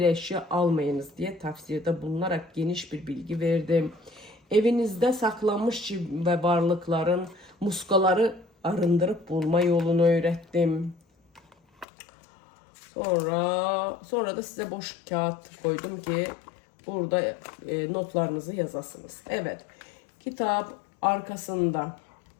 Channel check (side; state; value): right; drops out; at 11.9 s